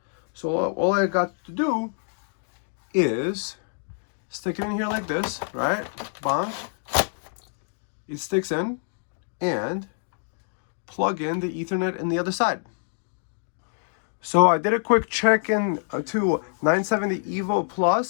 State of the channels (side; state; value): right; silent; digital silence